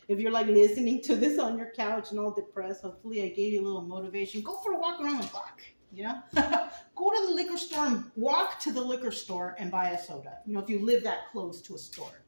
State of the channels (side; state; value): both; inverted; correlation -1.00